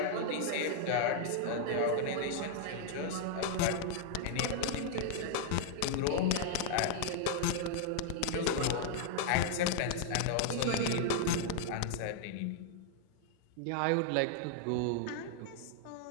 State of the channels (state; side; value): different; both; correlation -0.01